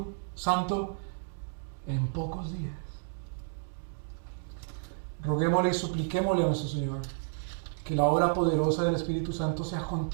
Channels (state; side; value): silent; left; digital silence